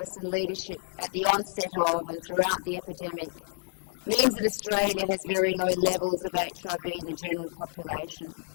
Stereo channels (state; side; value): silent; right; 58 dB below the other